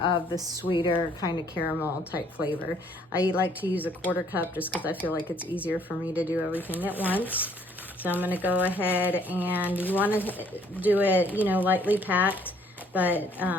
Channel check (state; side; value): normal; both; correlation 0.63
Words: the sweeter kind of caramel type flavor. I like to use a 1/4 cup just because I feel like it's easier for me to do everything at once. So I'm gonna go ahead, and you wanna do it, you know, lightly packed, but